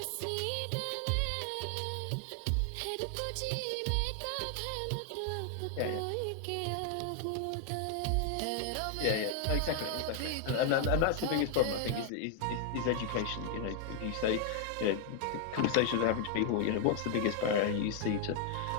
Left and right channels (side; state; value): both; different; correlation 0.00